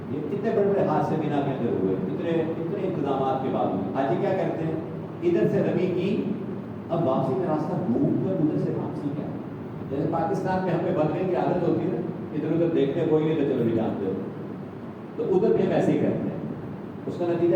یہ کتنے بڑے بڑے حادثے بنا کے اندر ہوئے، اتنے انتظامات کے باوجود. حاجی کیا کرتے ہیں، ادھر سے رمی کی، اب واپسی کا راستہ ڈھونڈ کر ادھر سے واپسی کیا. جیسے پاکستان میں ہمیں بننے کی عادت ہوتی ہے نا، ادھر ادھر دیکھنے کوئی نہیں تو چلو بھی جانتے ہو، تو ادھر بھی ہم ایسے ہی کرتے ہیں. اس کا نتیجہ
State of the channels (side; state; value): both; identical; correlation 1.00